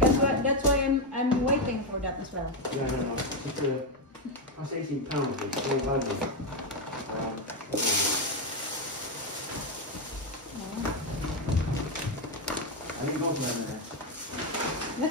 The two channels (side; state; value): both; normal; correlation 0.06